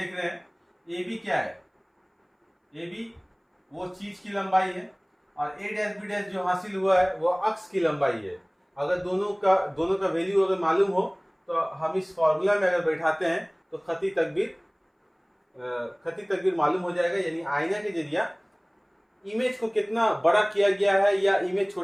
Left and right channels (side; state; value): both; identical; correlation 1.00